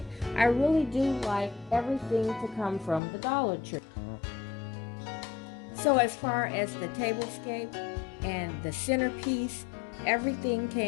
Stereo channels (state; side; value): drops out; right; at 3.0 s